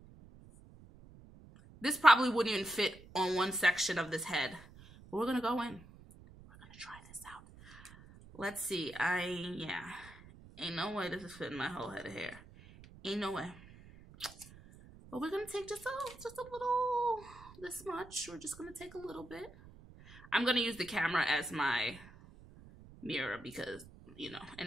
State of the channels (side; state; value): right; noise; rumble, 20 dB below the sound